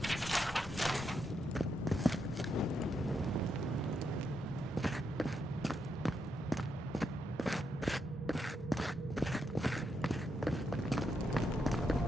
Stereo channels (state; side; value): normal; both; correlation 0.81